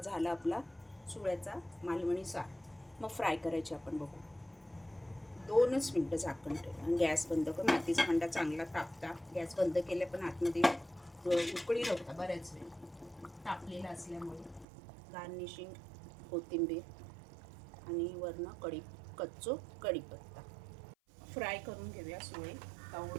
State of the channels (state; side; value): drops out; left; at 14.7 s